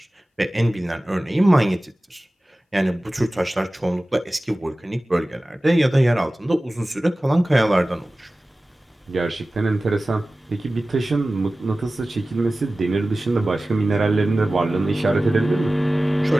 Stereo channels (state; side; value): normal; both; correlation 0.97